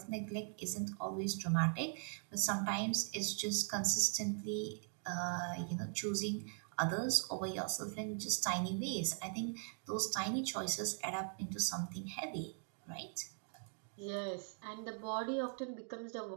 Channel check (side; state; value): left; silent; 51 dB below the other